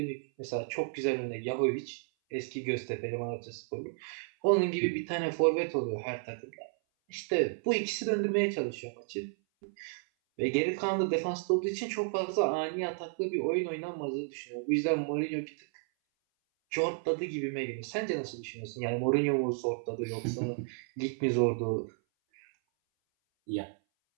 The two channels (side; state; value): left; silent; 56 dB below the other